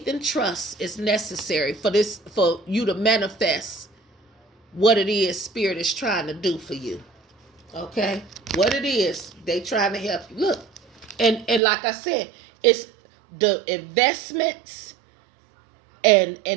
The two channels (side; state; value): left; drops out; at 11.6 s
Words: and trust is necessary for you to manifest what it is Spirit is trying to do for you. Okay? What it is, they trying to help you. Look. And like I said, it's the investments and